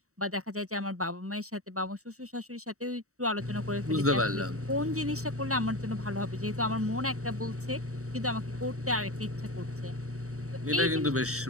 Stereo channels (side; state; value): left; late; 0.64 ms